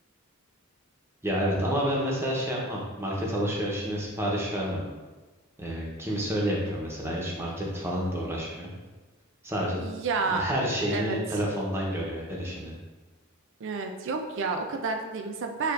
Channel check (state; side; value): normal; both; correlation 0.35